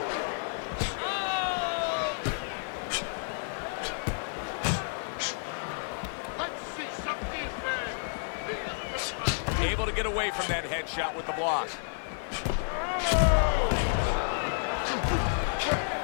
Able to get away from that headshot with the block.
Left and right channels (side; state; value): right; silent; 57 dB below the other